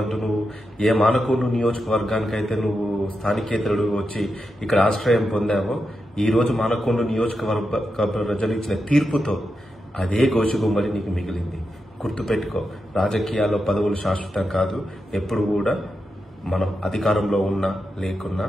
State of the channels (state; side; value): normal; both; correlation 0.88